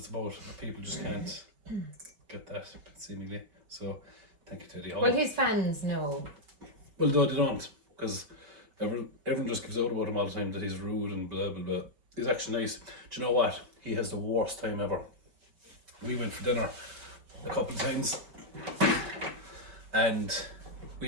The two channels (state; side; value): late; left; 5.2 ms